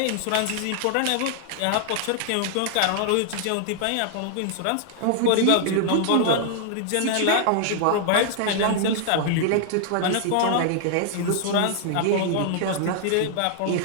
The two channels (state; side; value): different; both; correlation 0.00